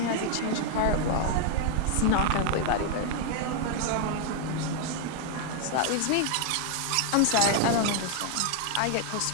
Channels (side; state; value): both; different; correlation 0.00